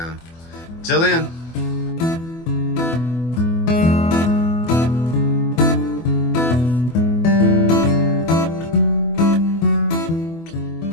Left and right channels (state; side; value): late; right; 24 ms